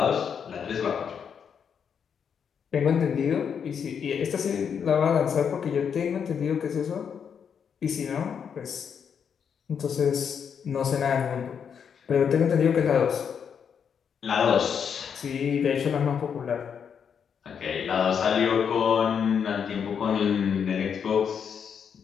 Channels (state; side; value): quieter; right; 7.3 dB